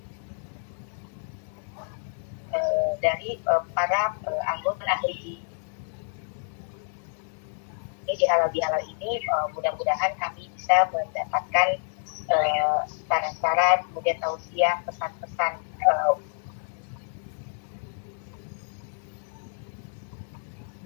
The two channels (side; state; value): right; silent; 59 dB below the other